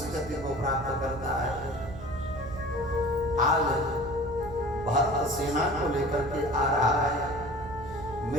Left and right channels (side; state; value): right; noise; hum, 13 dB below the sound